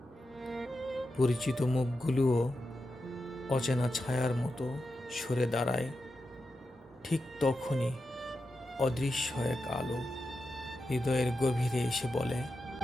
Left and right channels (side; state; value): both; normal; correlation 0.89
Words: পরিচিত মুখগুলোও অচেনা ছায়ার মতো সরে দাঁড়ায়, ঠিক তখনই অদৃশ্য এক আলো হৃদয়ের গভীরে এসে বলে,